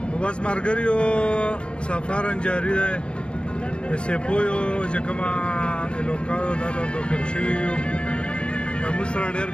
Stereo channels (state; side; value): late; right; 0.056 ms